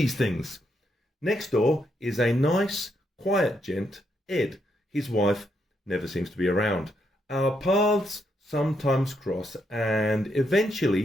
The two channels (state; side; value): normal; both; correlation 0.78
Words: things. Next door is a nice, quiet gent, Ed. His wife never seems to be around. Our paths sometimes cross, and